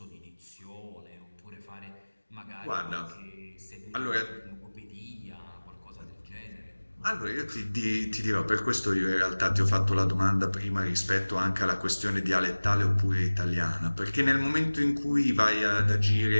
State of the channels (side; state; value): both; inverted; correlation -1.00